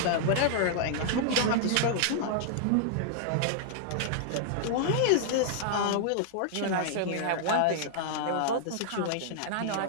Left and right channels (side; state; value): both; different; correlation -0.01